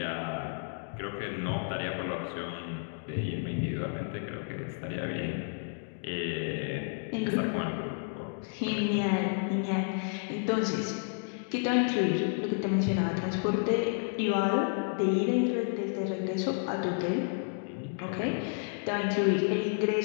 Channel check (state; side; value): silent; right; 57 dB below the other